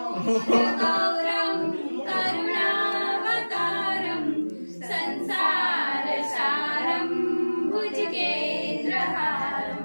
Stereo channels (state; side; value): inverted; both; correlation -1.00